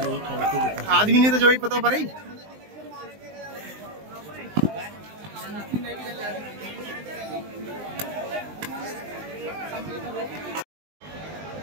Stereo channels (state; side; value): late; left; 19 ms